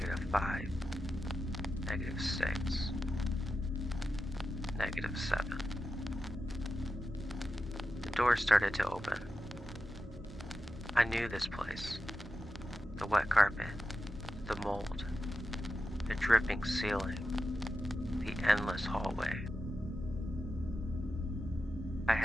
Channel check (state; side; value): normal; both; correlation 0.91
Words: -6, -7. The door started to open. I knew this place. The wet carpet, the mold, the dripping ceiling, the endless hallway. I